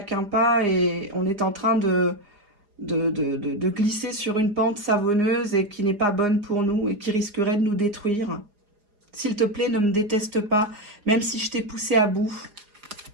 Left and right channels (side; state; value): left; late; 4.9 ms